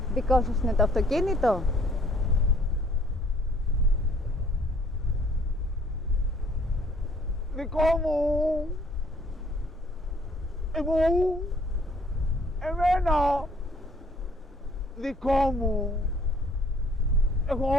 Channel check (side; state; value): both; normal; correlation 0.60